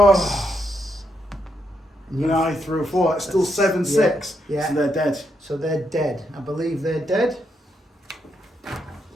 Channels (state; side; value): normal; both; correlation 0.79